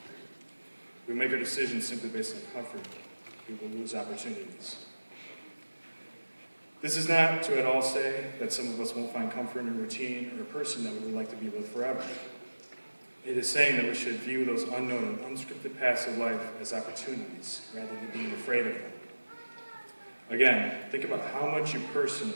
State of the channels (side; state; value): both; inverted; correlation -1.00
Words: We make our decisions simply based on comfort. We will lose opportunities. This is not to at all say that some of us won't find comfort in a routine or a person that we would like to be with forever. It is saying that we should view those unknown and unscripted paths of life as opportunities rather than being afraid of them. Again, think about how much you